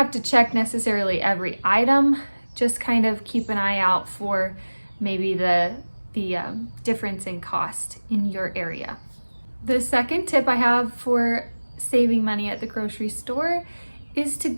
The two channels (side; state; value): both; inverted; correlation -1.00